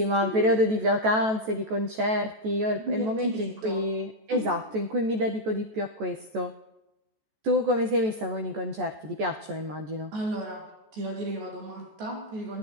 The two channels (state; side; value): late; left; 14 ms